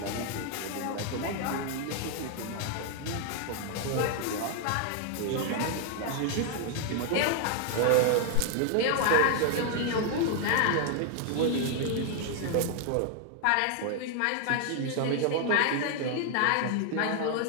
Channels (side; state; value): both; different; correlation 0.00